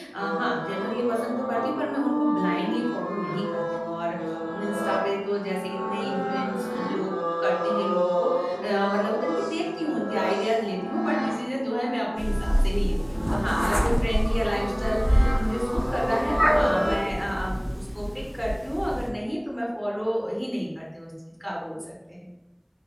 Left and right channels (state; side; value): identical; both; correlation 1.00